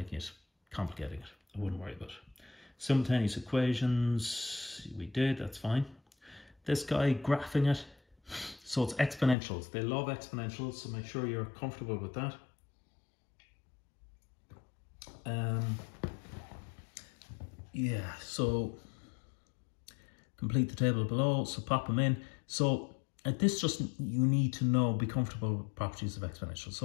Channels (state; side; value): drops out; right; at 9.3 s